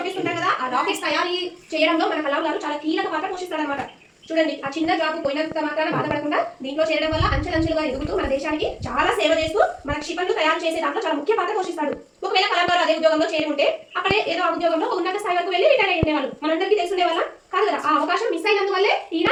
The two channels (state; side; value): identical; both; correlation 1.00